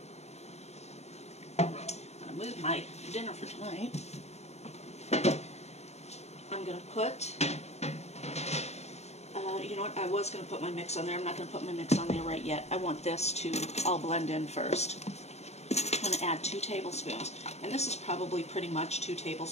I'm going to move my dinner for tonight. I'm going to put, you know what, I was going to put my mix on there. I'm not going to put my mix on there right yet. I want this to all blend in first. I'm going to add 2 tablespoons. And this is probably pretty much 2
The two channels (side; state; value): right; late; 0.32 ms